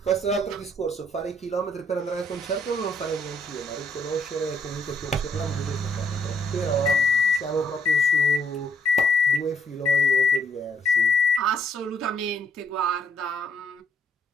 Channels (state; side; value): normal; both; correlation 0.70